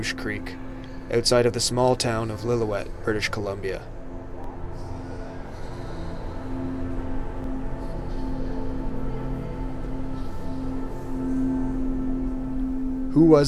Creek, outside of the small town of Lillooet, British Columbia. Who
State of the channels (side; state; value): both; identical; correlation 1.00